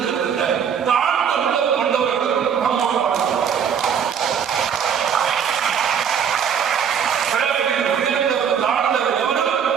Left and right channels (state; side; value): quieter; left; 7.7 dB